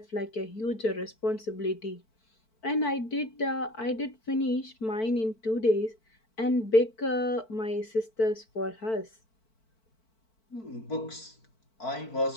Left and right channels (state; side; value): late; right; 4.5 ms